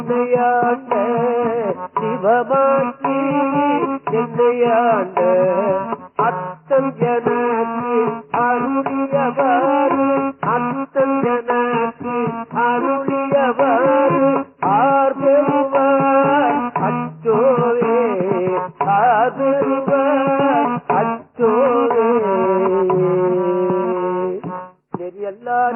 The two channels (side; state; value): both; identical; correlation 1.00